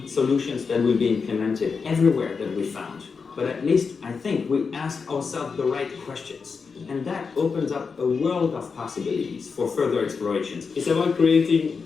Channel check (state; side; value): quieter; right; 5.3 dB